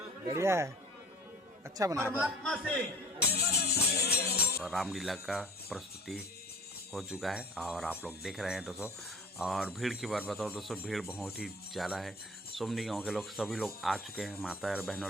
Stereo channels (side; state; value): both; normal; correlation 0.44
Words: बढ़िया है, अच्छा बना है। परमात्मा से और रामलीला का प्रस्तुति हो चुका है और आप लोग देख रहे हैं दोस्तों। और भीड़ की बात बताओ दोस्तों, भीड़ बहुत ही ज़्यादा है। सुमनी गांव के लोग सभी लोग आ चुके हैं, माता और